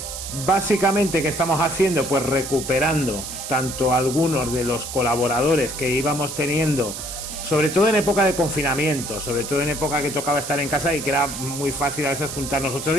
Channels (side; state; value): right; noise; hiss, 8 dB below the sound